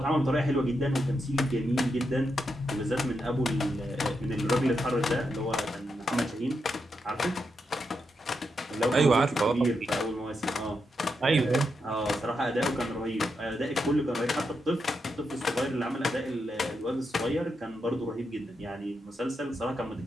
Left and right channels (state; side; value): normal; both; correlation 0.84